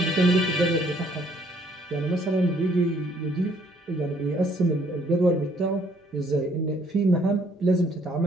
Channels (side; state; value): both; normal; correlation 0.64